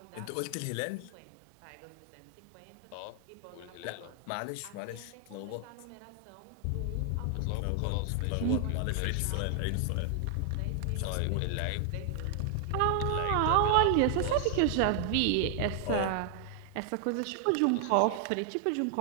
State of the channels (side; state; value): both; different; correlation 0.00